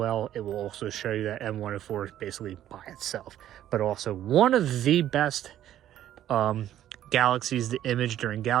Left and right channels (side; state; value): left; quieter; 11.9 dB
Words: it will also show you that M104 is basically by itself, but also one of the best galaxies to image during